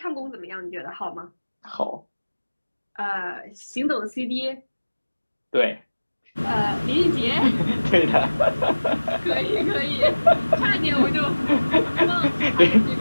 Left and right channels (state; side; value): inverted; both; correlation -1.00